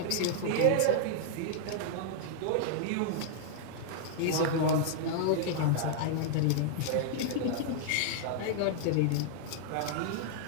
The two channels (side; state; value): both; different; correlation -0.01